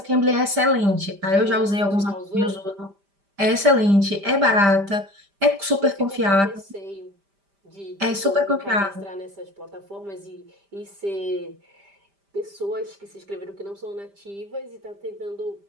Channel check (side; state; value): left; late; 5.0 ms